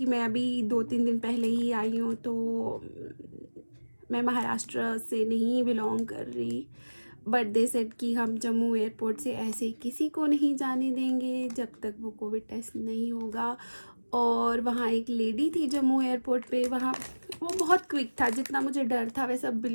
मैं अभी 2-3 दिन पहले ही आई हूँ, तो मैं महाराष्ट्र से नहीं बिलोंग कर रही, बट दे सेड कि हम जम्मू एयरपोर्ट से ऐसे किसी को नहीं जाने देंगे जब तक वो कोविड टेस्ट नहीं होगा। और वहाँ एक लेडी थी जम्मू एयरपोर्ट पे, वहाँ वो बहुत क्विक था, जितना मुझे डर था वैसा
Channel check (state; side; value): inverted; both; correlation -1.00